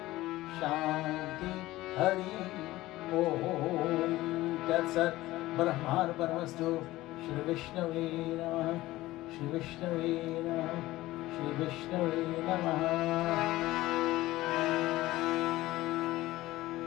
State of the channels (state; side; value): quieter; right; 17.3 dB